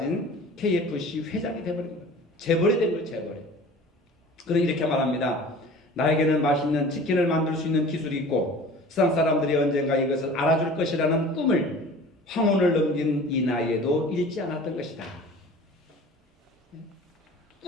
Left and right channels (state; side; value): normal; both; correlation 0.43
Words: KFC 회장이 돼버린 거예요. 재벌이 된 거예요. 재벌이. 그럼 이렇게 말합니다. 나에게는 맛있는 치킨을 만들 수 있는 기술이 있고 세상 사람들이 언젠가 이것을 알아줄 것이라는 꿈을 황혼을 넘긴 이 나이에도 잃지 않았던 것이다.